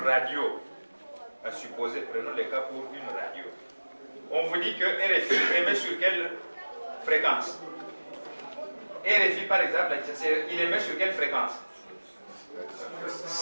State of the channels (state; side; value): inverted; both; correlation -1.00